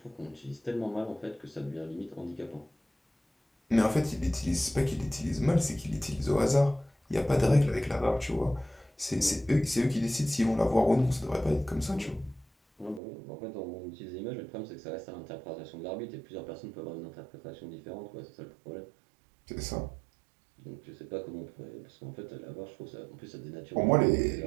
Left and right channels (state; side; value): drops out; left; at 13.0 s